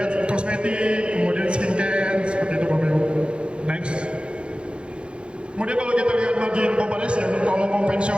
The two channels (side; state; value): left; late; 0.056 ms